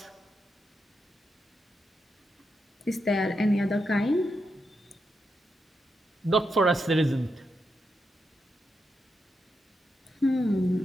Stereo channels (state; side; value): normal; both; correlation 0.85